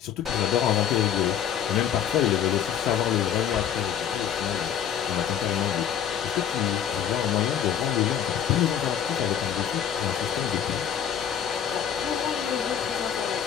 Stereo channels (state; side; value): quieter; right; 9.1 dB